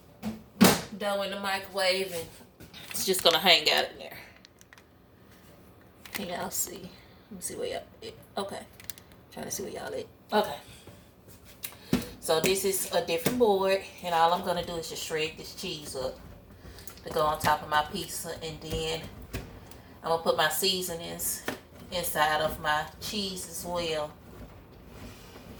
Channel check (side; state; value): both; identical; correlation 1.00